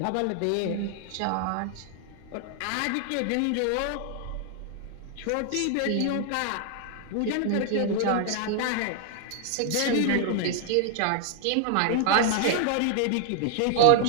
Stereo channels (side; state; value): both; different; correlation 0.00